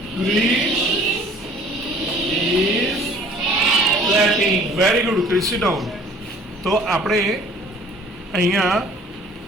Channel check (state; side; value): normal; both; correlation 0.52